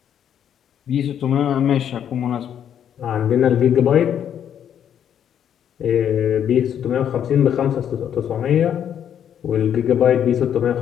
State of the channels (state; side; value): quieter; right; 9.2 dB